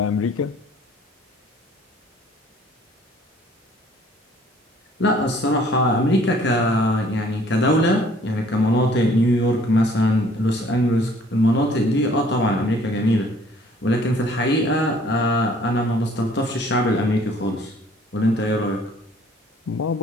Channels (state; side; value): normal; both; correlation 0.57